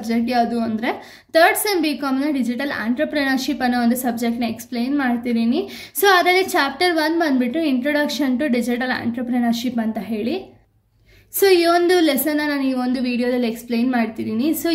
ಯಾವುದು ಅಂದರೆ ಥರ್ಡ್ ಸೆಮ್ BComನ ಡಿಜಿಟಲ್ ಆಂಟ್ರಪ್ರಿನರ್ಶಿಪ್ ಅನ್ನೋ ಒಂದು ಸಬ್ಜೆಕ್ಟ್ನ ಎಕ್ಸ್ಪ್ಲೈನ್ ಮಾಡ್ತಿದ್ದೀನಿ. ಸೊ ಅದರಲ್ಲಿ ಚಾಪ್ಟರ್ 1 ಬಂದುಬಿಟ್ಟು ಇಂಟ್ರೊಡಕ್ಷನ್ ಟು ಡಿಜಿಟಲ್ ಆಂಟ್ರಪ್ರಿನರ್ಶಿಪ್ ಅಂತ ಹೇಳಿ. ಸೊ ಈ ಒಂದು ಲೆಸನ್ನ ನಾನು ಈ ಒಂದು ವಿಡಿಯೋದಲ್ಲಿ ಎಕ್ಸ್ಪ್ಲೈನ್ ಮಾಡ್ತಿದ್ದೀನಿ. ಸೊ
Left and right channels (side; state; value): both; identical; correlation 1.00